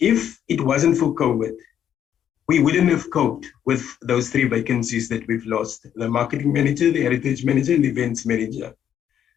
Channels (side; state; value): right; quieter; 9.6 dB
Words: it wasn't for COVID, we wouldn't have coped with those 3 vacancies that we've lost: the marketing manager, the heritage manager, and the events manager.